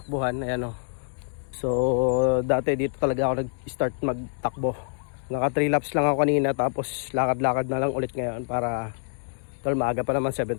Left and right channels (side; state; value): right; silent; digital silence